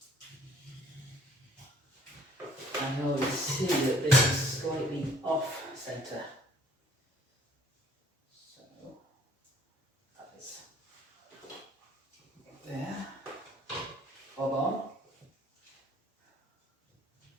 And you'll see that this is slightly off centre. So that is there. Bob on.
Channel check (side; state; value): both; normal; correlation 0.58